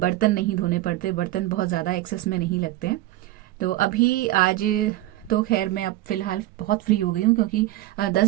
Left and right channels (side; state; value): left; quieter; 16.2 dB